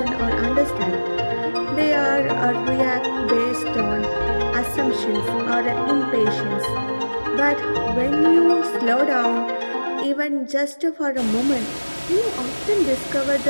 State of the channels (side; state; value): both; inverted; correlation -1.00